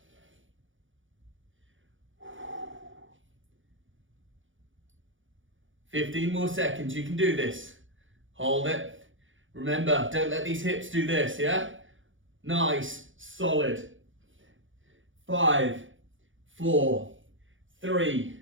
"15 more seconds, you can do this. Hold it. Remember, don't let these hips do this, yeah? Nice, solid. 5, 4, 3,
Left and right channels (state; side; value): late; left; 0.57 ms